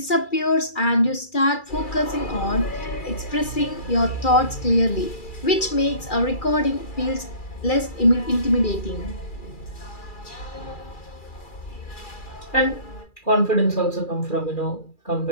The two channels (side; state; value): right; late; 2.4 ms